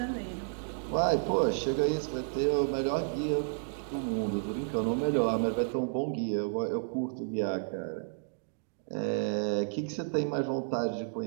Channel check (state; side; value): silent; left; digital silence